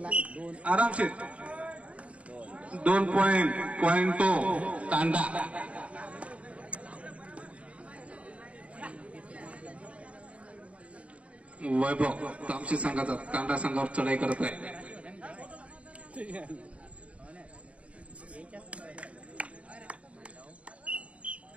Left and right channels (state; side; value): late; left; 0.064 ms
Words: आरामशीर 2 पॉइंट तो तांडा. वैभव तामशी संघाचा तांडा संघावर चढाई करत आहे.